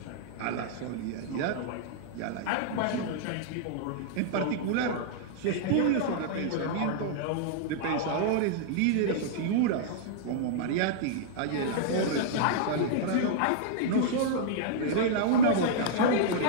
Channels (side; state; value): both; different; correlation -0.01